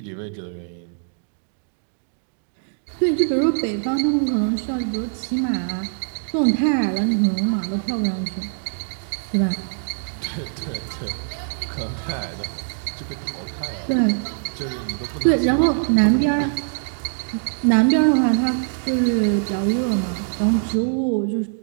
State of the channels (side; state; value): left; silent; 64 dB below the other